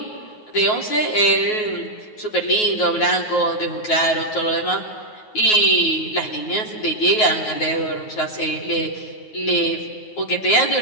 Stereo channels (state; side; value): late; right; 9.4 ms